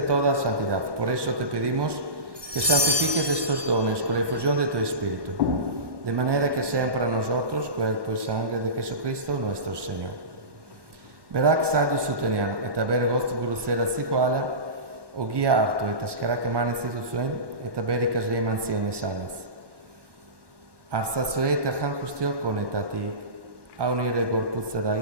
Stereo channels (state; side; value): late; left; 1.2 ms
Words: santidad. Por eso te pedimos que santifiques estos dones con la efusión de tu Espíritu, de manera que sean para nosotros cuerpo y sangre de Jesucristo nuestro Señor. Berak sadu zutenian eta bere goztu buruzera zikoala, ogia hartu eta eskerak eman ez dituzuen eta bere ikasle eman zion esanez. Arzatzue eta jan guztiok honetatik, hau nire gorputza